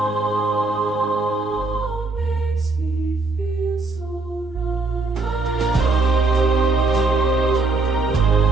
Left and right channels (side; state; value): left; quieter; 3.4 dB